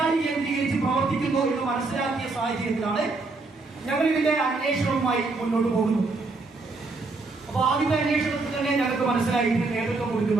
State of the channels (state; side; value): quieter; left; 3.6 dB